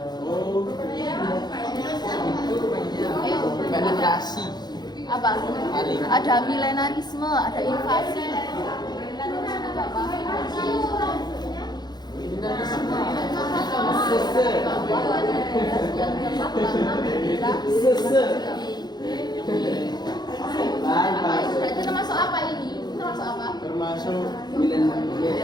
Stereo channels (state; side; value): late; right; 0.20 ms